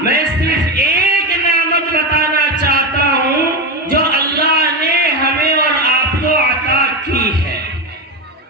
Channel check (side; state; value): both; normal; correlation 0.15